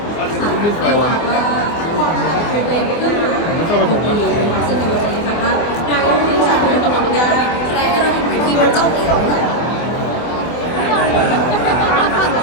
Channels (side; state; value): right; late; 24 ms